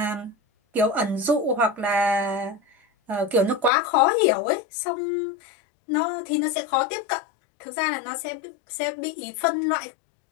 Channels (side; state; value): right; drops out; at 3.7 s